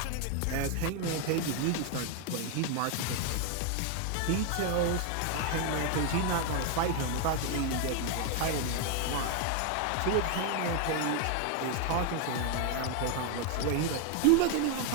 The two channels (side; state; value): both; different; correlation 0.01